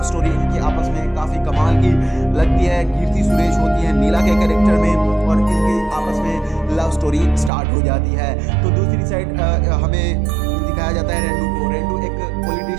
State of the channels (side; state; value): left; drops out; at 7.5 s